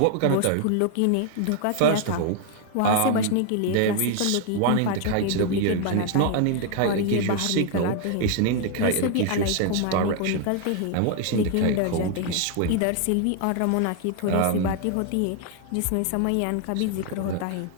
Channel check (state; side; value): different; both; correlation 0.00